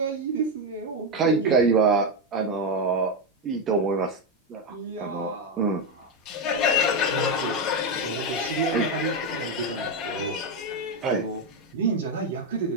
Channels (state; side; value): normal; both; correlation 0.08